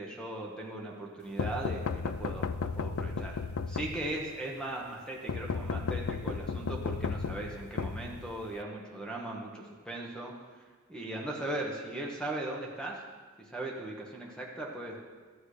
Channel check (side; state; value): both; normal; correlation 0.45